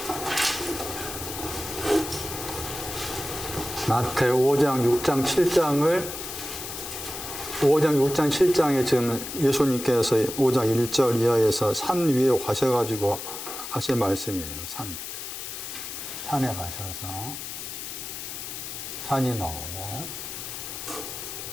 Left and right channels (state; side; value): noise; left; hiss, 8 dB below the sound